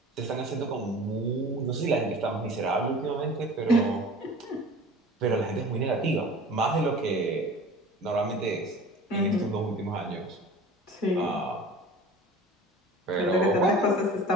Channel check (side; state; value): both; normal; correlation 0.41